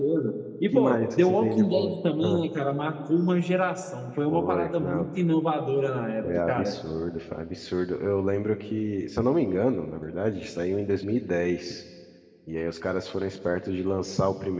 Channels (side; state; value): both; identical; correlation 1.00